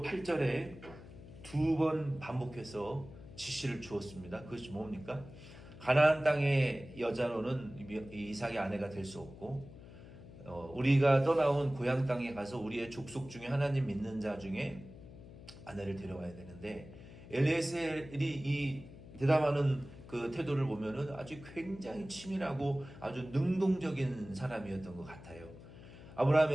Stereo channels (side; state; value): left; noise; hum, 17 dB below the sound